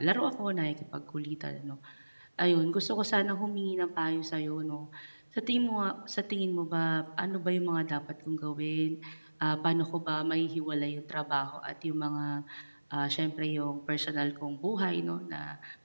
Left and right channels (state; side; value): inverted; both; correlation -1.00